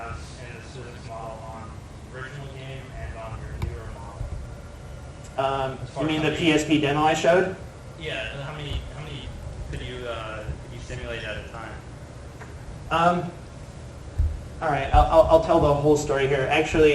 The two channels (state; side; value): identical; both; correlation 1.00